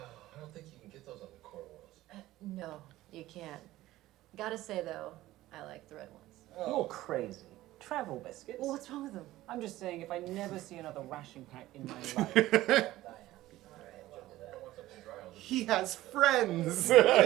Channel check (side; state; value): left; quieter; 16.1 dB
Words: don't think you can get those on the core worlds. No, you can't. Gotta say though, I like the red ones. You're crazy. Travel biscuits? Well, what's wrong with them? I'm just saying, if I never see another ration pack in my life. He has friends.